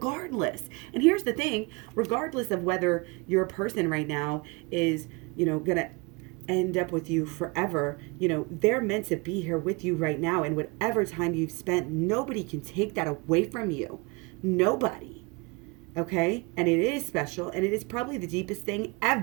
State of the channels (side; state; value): left; quieter; 28.1 dB